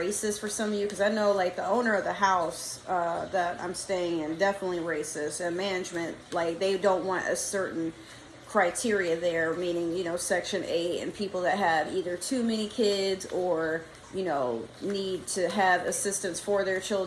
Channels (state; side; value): identical; both; correlation 1.00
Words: for some of you. Because I know like the owner of the house that I'm staying in, definitely racist. And management, like they don't want a certain criteria there, meaning, you know, Section 8 and people that have either too many kids or, you know, need to have assistance for their